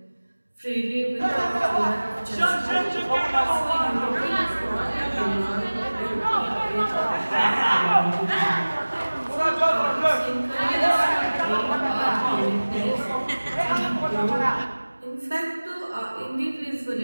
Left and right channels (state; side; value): inverted; both; correlation -1.00